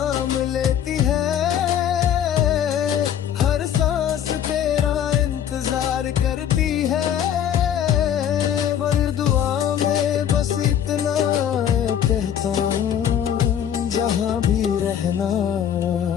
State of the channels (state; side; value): quieter; right; 9.6 dB